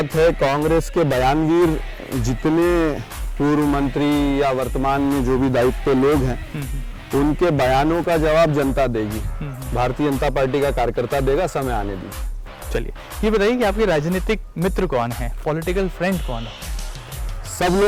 है कांग्रेस के बयानवीर जितने पूर्व मंत्री या वर्तमान में जो भी दायित्व पे लोग हैं, उनके बयानों का जवाब जनता देगी, भारतीय जनता पार्टी का कार्यकर्ता देगा, समय आने दीजिए। चलिए, ये बताइए कि आपके राजनीतिक मित्र कौन है, पॉलिटिकल फ्रेंड कौन है? सब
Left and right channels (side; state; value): both; identical; correlation 1.00